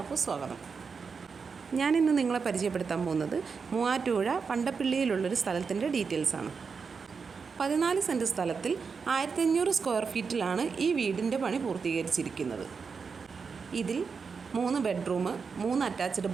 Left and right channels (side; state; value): left; quieter; 5.4 dB